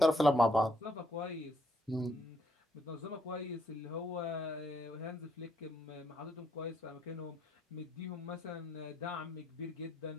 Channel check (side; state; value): both; normal; correlation 0.73